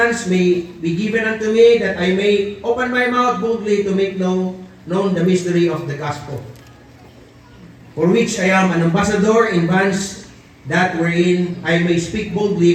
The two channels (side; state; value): both; identical; correlation 1.00